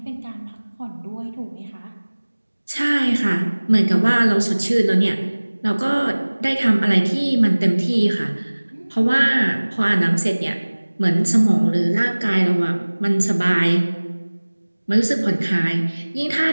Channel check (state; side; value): inverted; both; correlation -1.00